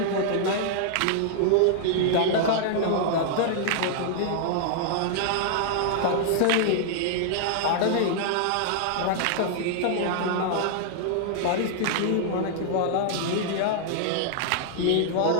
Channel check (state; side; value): different; both; correlation -0.01